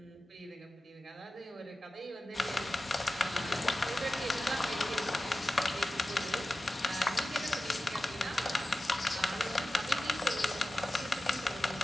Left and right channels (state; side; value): normal; both; correlation 0.95